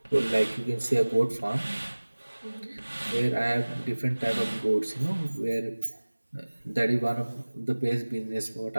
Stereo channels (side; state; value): both; inverted; correlation -1.00